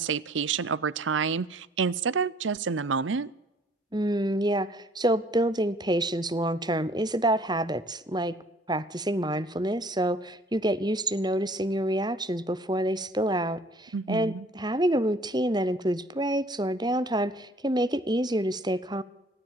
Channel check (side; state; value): both; normal; correlation 0.55